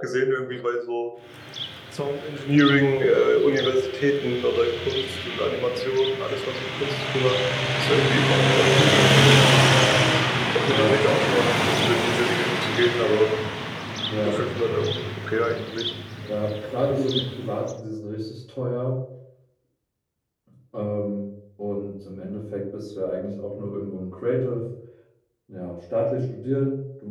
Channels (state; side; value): identical; both; correlation 1.00